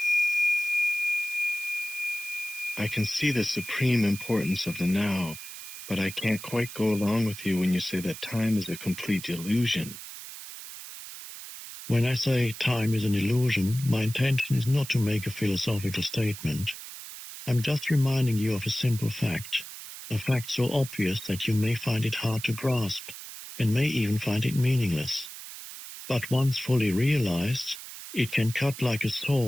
I can see the supreme importance of the now, but I can't quite go along with you when you say that time is a complete illusion. When I say time is an illusion, my intention is not to make a philosophical statement. I'm just reminding you of a simple fact, a fact so obvious that you may find it hard to grasp, and may even find it meaningless. But once fully realized, it can cut like a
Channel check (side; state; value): right; noise; hiss, 12 dB below the sound